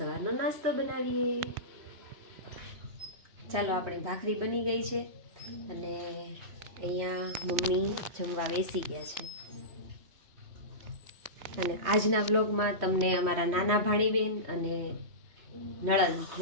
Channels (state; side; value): late; left; 3.1 ms